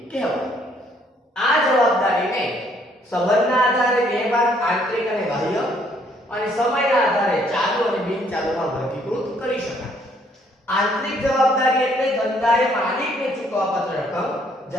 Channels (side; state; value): both; normal; correlation 0.65